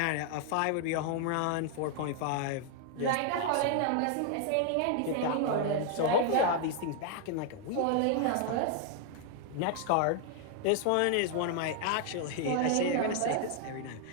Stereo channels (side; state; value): both; different; correlation 0.00